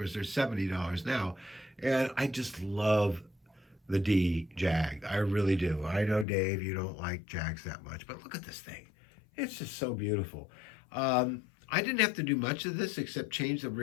they're $70 now. And I just love the D Jag. I really do. I know, Dave, you don't like Jags that much, but look at this thing. It's just so beautiful. I didn't have to do much of this except change the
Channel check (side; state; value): right; drops out; at 6.2 s